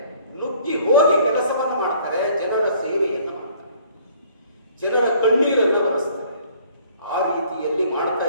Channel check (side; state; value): both; inverted; correlation -0.58